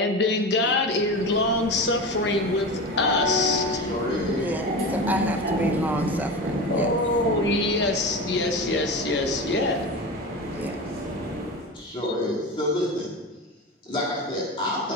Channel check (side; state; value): both; normal; correlation 0.26